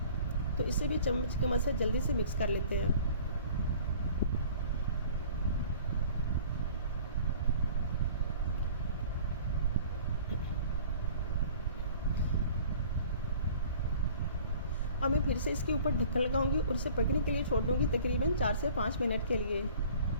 तो इसे भी चम्मच की मदद से जल्दी से मिक्स कर लेते हैं। और मैं फिर से इसके ऊपर ढक्कन लगाऊंगी और इसे पकने के लिए छोड़ दूंगी तकरीबन 4 से 5 मिनट के लिए।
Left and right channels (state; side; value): inverted; both; correlation -0.48